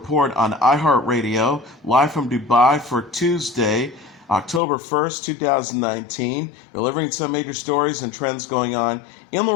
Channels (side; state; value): right; drops out; at 4.6 s